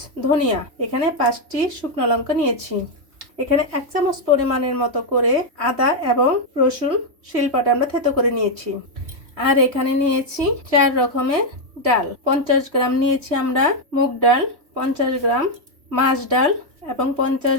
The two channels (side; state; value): left; late; 3.1 ms